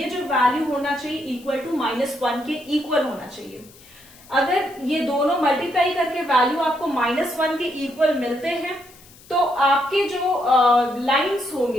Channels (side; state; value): left; noise; hiss, 24 dB below the sound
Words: जो वैल्यू होना चाहिए इक्वल टू -1 के इक्वल होना चाहिए। अगर ये दोनों मल्टीप्लाई करके वैल्यू आपको -1 के इक्वल मिलते हैं तो आपके जो लाइंस